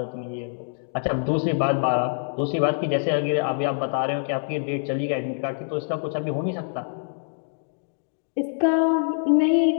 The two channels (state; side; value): silent; right; digital silence